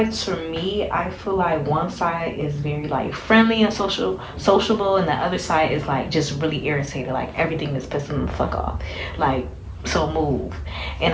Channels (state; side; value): identical; both; correlation 1.00